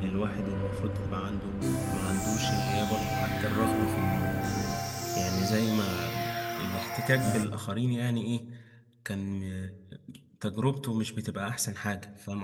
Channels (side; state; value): both; identical; correlation 1.00